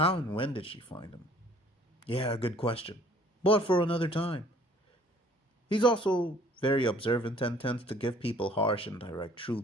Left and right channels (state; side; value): normal; both; correlation 0.56